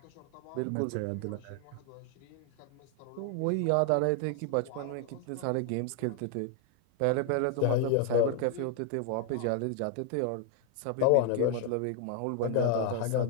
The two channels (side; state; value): both; different; correlation 0.00